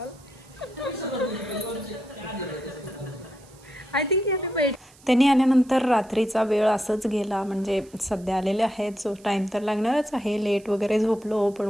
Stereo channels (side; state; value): right; noise; hiss, 26 dB below the sound